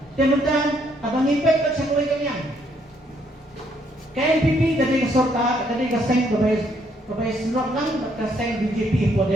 sementara abang ipet kat sa kulay kanyang KNPP dari sorta dari kaseng kabay slot lang kaseng BJP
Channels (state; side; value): normal; both; correlation 0.70